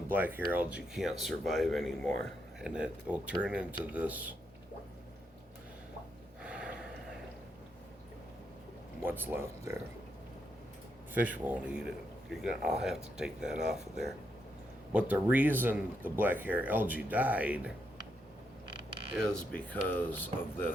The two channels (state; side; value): normal; both; correlation 0.80